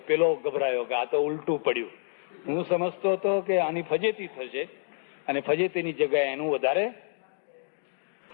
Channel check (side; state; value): right; silent; digital silence